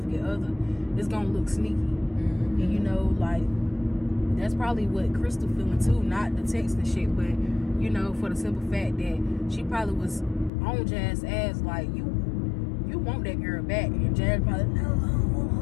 other, it's gonna look sneaky. Mm-hmm. And that's probably what Crystal feeling too, not the text and shit, but for the simple fact that she probably was on Jazz's ass like, you want that girl back, and Jazz probably, no, I don't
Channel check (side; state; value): right; drops out; at 10.5 s